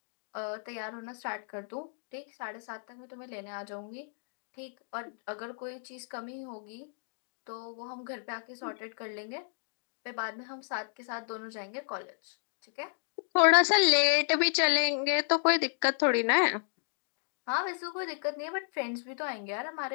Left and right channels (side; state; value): right; silent; digital silence